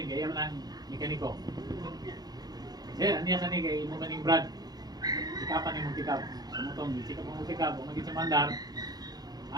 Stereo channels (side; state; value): left; late; 0.19 ms